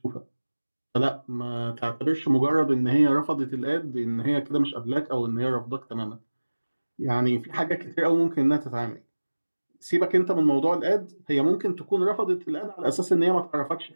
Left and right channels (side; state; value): both; inverted; correlation -1.00